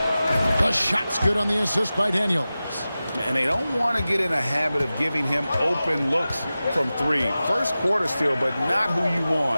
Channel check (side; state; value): both; inverted; correlation -0.95